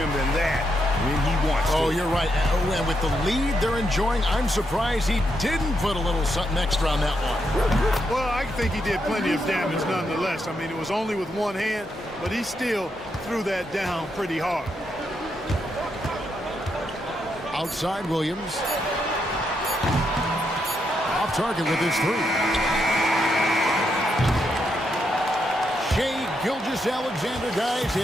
than that when he wants to. Oh, you're right. And with the lead they're enjoying, I'm surprised he didn't put a little something extra on that one. Well, I think he did plenty of damage nonetheless. I mean, it was only with one hand, but he still threw that down pretty hard. Outside Williams. Off target with his 3. Shai Gilgeous-Alexander, guys,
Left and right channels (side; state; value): both; normal; correlation 0.80